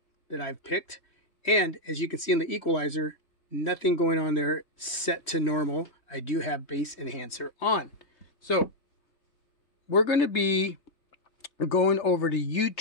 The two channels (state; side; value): late; right; 3.1 ms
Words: that I've picked, and as you can see in the equalizer, nothing going on there, set to normal. I do have bass enhancer on. So we're going to be going over to